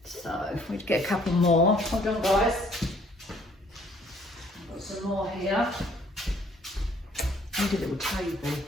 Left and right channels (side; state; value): both; normal; correlation 0.61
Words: So if we get a couple more, hold on guys. I've got some more here. I need a little table.